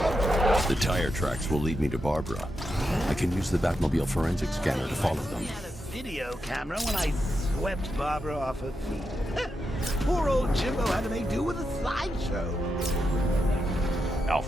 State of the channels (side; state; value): both; normal; correlation 0.86